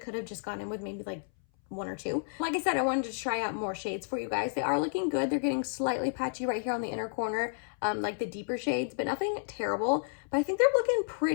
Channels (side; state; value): right; silent; 57 dB below the other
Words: have just gone in with maybe like 1 or 2. Like I said, I wanted to try out more shades for you guys. They are looking good. They're getting slightly patchy right here on the inner corner, like the deeper shades, but nothing terrible. But I think they're looking